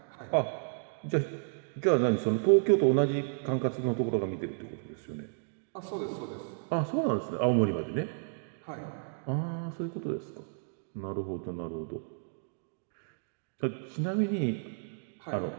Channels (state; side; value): silent; left; digital silence